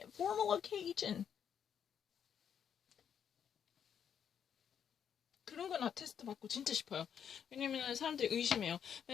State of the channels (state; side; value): quieter; right; 8.2 dB